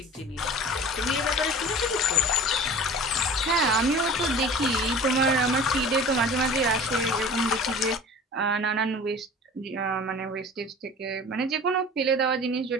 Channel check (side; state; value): both; normal; correlation 0.41